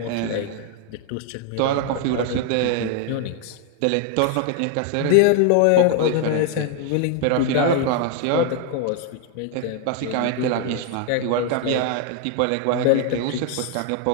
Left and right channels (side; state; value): both; different; correlation 0.00